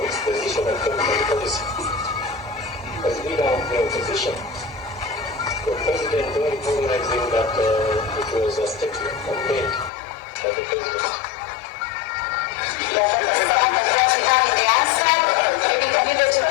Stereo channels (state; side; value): drops out; right; at 9.9 s